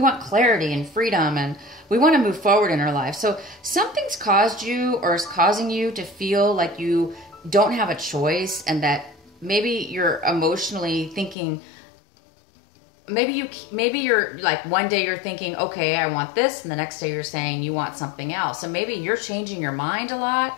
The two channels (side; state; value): right; drops out; at 11.4 s